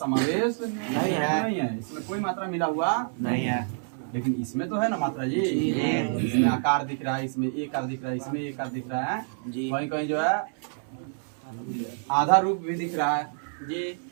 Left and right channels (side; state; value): left; silent; 60 dB below the other